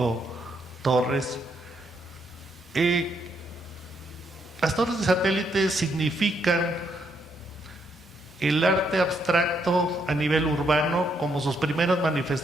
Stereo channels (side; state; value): both; normal; correlation 0.75